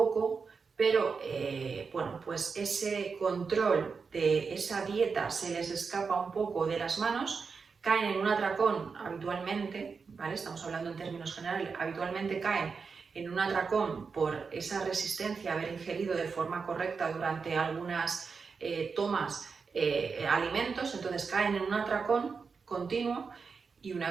pero ese control de esa dieta se les escapa un poco de las manos, caen en un atracón habitualmente, ¿vale? Estamos hablando en términos generales, habitualmente caen en un atracón por esa resistencia a haber ingerido de forma correcta durante algunas tomas alimentos, entonces caen en un atracón continuo y una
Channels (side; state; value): left; quieter; 5.2 dB